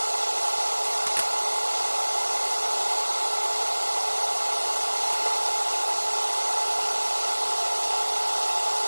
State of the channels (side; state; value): both; inverted; correlation -1.00